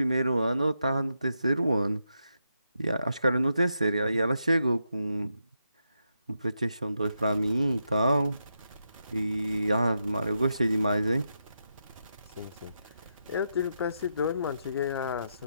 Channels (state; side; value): inverted; both; correlation -0.84